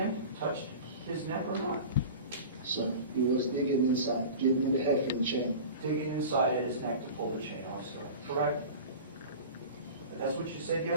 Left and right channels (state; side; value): inverted; both; correlation -0.36